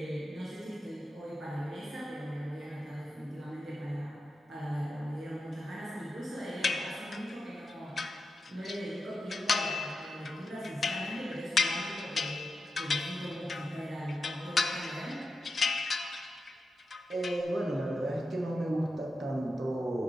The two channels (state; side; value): normal; both; correlation 0.89